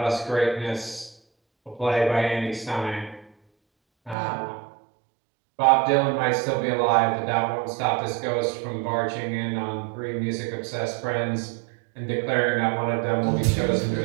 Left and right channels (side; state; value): left; drops out; at 4.2 s